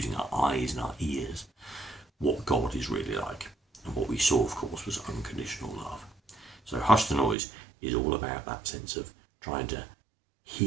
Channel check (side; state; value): left; drops out; at 7.4 s